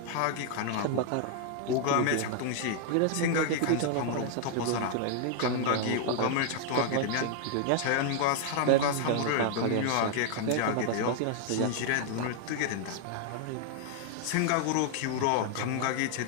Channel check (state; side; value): different; both; correlation 0.00